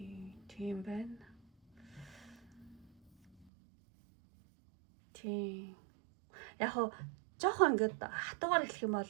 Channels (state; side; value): drops out; left; at 3.5 s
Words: Тийм байна. Тийм. Яг хоо жоохон ингээд хатуугаар хэлэх юм